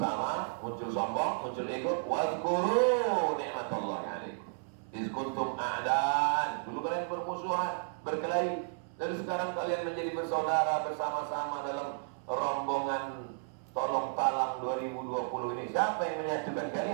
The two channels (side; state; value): left; silent; 56 dB below the other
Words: muncul sombong, muncul ego. Wazkuru ni'matallahi 'alaikum. Iz kuntum a'dan. Dulu kalian bermusuhan, berkelahi. Dan sekarang kalian menjadi bersaudara bersama-sama dalam rombongan tolong talang 2020 ini. Siapa yang menyatukan